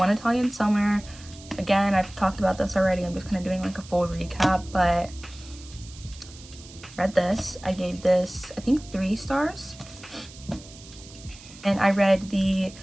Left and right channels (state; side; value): noise; right; hiss, 19 dB below the sound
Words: Italian Summer. Again, I've talked about this already. I'm just kind of doing like a full recap, but read this. I gave this, I think, 3 stars. And I read the